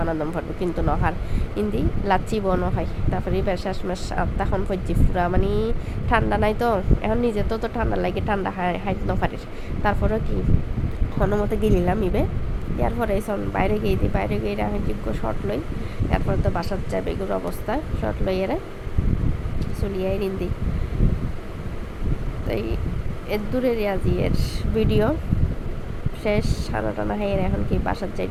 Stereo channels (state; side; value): identical; both; correlation 1.00